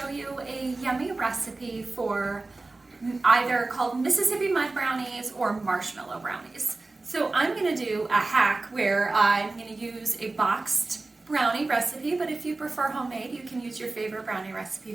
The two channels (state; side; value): quieter; left; 3.3 dB